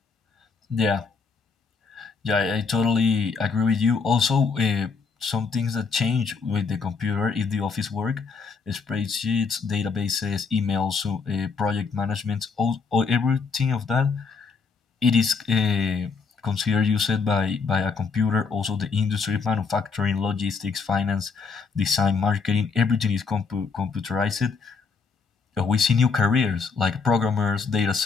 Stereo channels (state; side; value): quieter; right; 5.0 dB